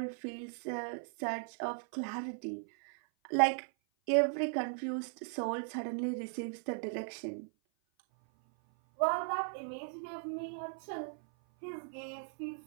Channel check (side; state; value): left; silent; 53 dB below the other